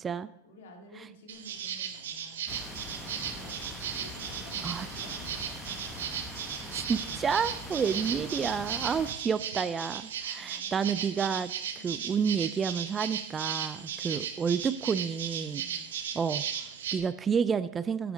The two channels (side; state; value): left; quieter; 6.3 dB